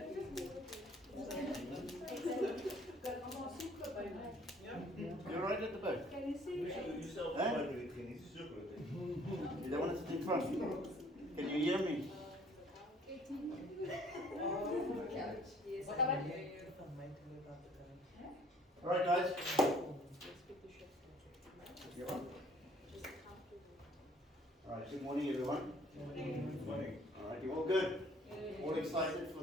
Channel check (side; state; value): both; normal; correlation 0.58